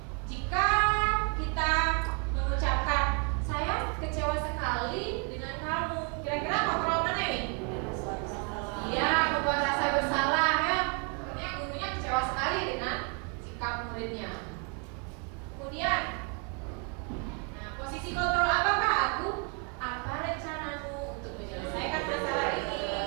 Jika kita mengucapkan saya kecewa sekali dengan kamu, kira-kira kontrol mana ini? Iya, membuat rasa bersalah ya. Akhirnya gurunya kecewa sekali dengan sikap muridnya. Kemudian, nah, posisi kontrol apakah aku? Apa rencanamu untuk menyelesaikan masalah ini?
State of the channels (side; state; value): left; quieter; 36.5 dB